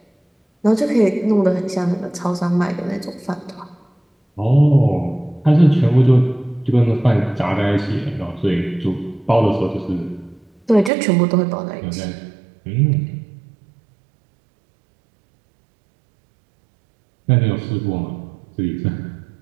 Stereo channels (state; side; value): drops out; left; at 10.9 s